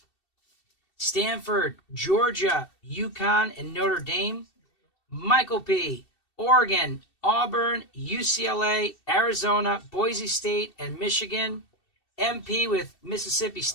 Stanford, Georgia, UConn, and Notre Dame. Michael P, Oregon, Auburn, UCLA, Arizona, Boise State, and Michigan. MP with Mississippi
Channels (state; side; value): late; right; 2.7 ms